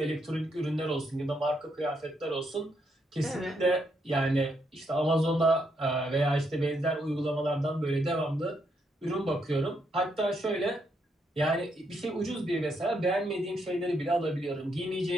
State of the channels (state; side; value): normal; both; correlation 0.77